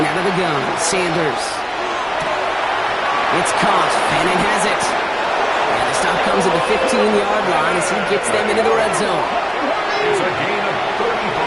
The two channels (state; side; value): identical; both; correlation 1.00